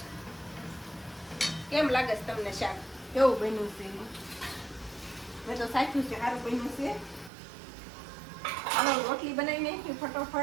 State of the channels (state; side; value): drops out; left; at 7.3 s